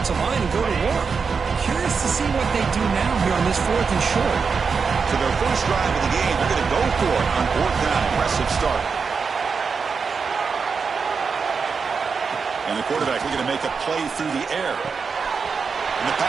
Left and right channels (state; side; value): quieter; left; 5.4 dB